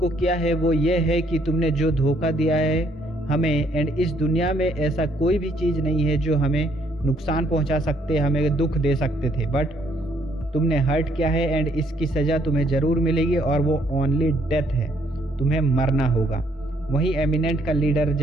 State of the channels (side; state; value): both; normal; correlation 0.69